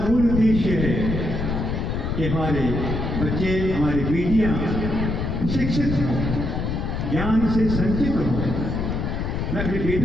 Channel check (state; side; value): noise; left; rumble, 2 dB below the sound